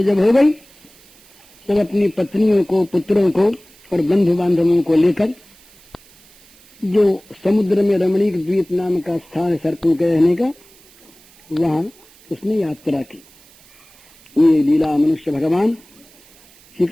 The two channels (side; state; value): right; noise; hiss, 27 dB below the sound